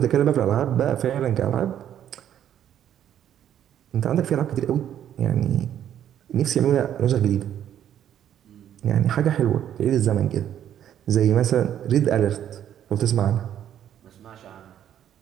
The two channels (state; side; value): quieter; left; 10.4 dB